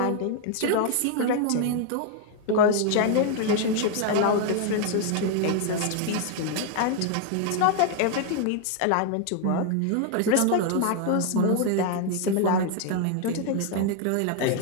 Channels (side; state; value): both; different; correlation 0.00